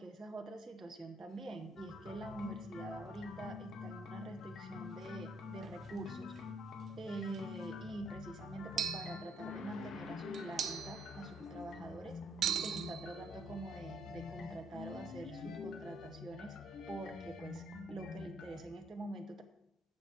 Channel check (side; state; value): both; normal; correlation 0.68